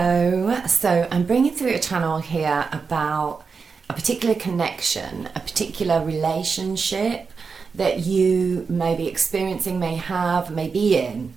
So I'm bringing through a channel here about a particular connection, a particular relationship that you may be experiencing, may have, may be in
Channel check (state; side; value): quieter; left; 5.1 dB